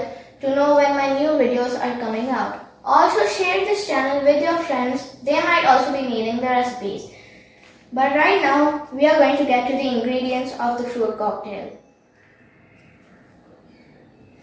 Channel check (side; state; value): both; identical; correlation 1.00